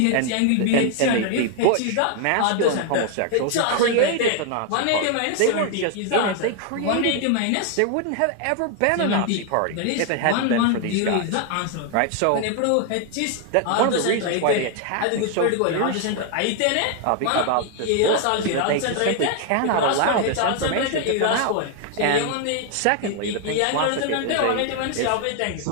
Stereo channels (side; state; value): both; different; correlation 0.00